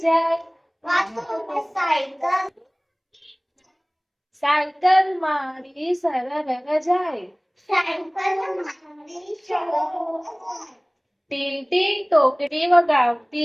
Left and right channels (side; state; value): both; identical; correlation 1.00